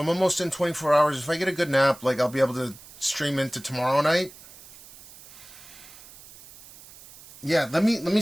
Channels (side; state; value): right; noise; hiss, 20 dB below the sound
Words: I'm almost in 24 hours. If I get a good nap, I'll be able to stream into tomorrow night. Yeah, let me